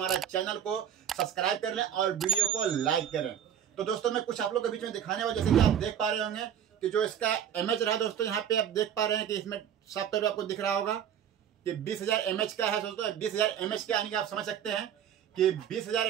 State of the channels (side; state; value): left; quieter; 9.5 dB